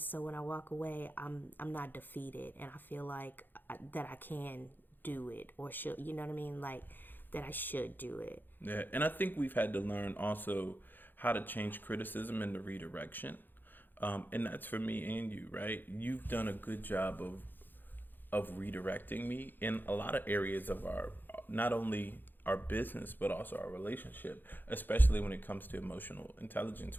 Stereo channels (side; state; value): right; late; 0.091 ms